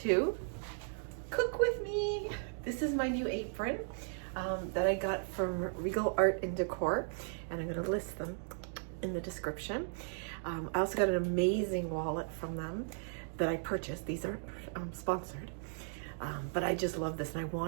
Cook With Me. This is my new apron that I got from Regal Art and Decor, and I'm gonna list them in the description. I also got an amazing wallet from them that I purchased. These aren't sponsored, but I just love this, and I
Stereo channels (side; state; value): left; silent; digital silence